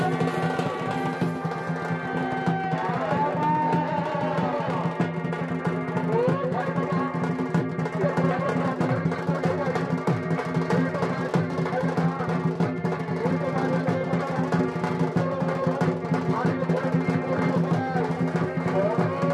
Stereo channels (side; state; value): both; identical; correlation 1.00